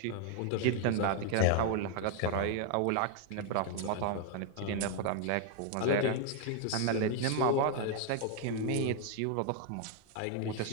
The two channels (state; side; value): different; both; correlation 0.00